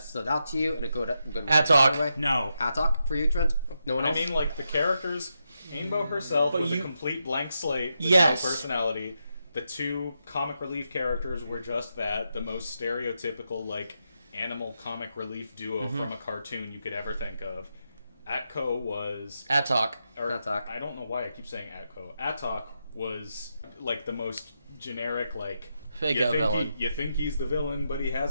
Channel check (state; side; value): inverted; both; correlation -0.85